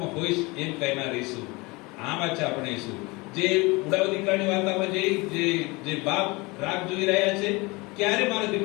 હોઈશ એમ કહેનાર ઈસુ. આ વાત છે આપણે ઈસુ. જે ઉડાવ દીકરાની વાર્તામાં જે બાપ રાહ જોઈ રહ્યા છે, ક્યારે મારો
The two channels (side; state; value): right; quieter; 25.0 dB